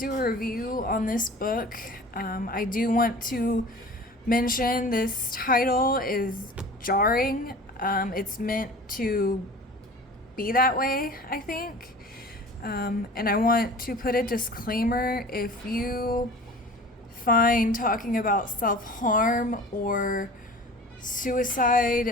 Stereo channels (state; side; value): normal; both; correlation 0.41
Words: a review on this book. I do want to mention this title is jarring. It's meant to be that way, I think. And I want to put a disclaimer if you find talking about self harm or